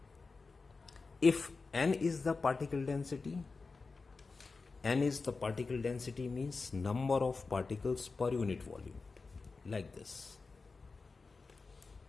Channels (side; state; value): right; quieter; 4.2 dB